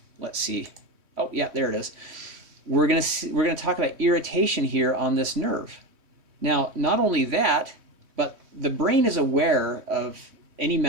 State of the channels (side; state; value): left; late; 3.2 ms